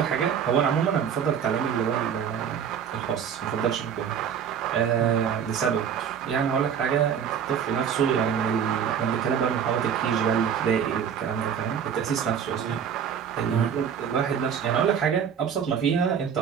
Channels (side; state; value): left; quieter; 7.9 dB